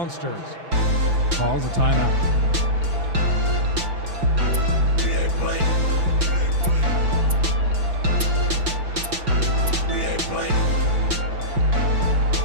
calls a timeout.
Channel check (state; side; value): late; left; 5.7 ms